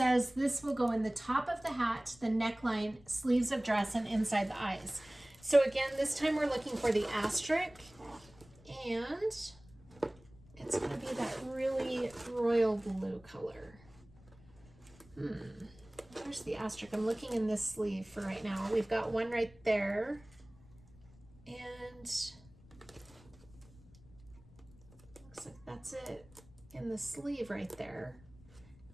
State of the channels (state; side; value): noise; left; rumble, 24 dB below the sound